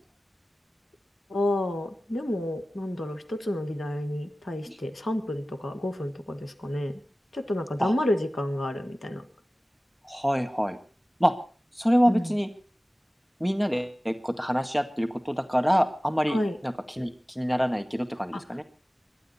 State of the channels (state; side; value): normal; both; correlation 0.97